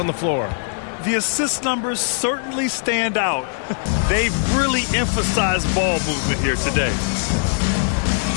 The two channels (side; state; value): right; silent; 65 dB below the other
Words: the floor. The assist numbers certainly stand out. They've really emphasized ball movement here today.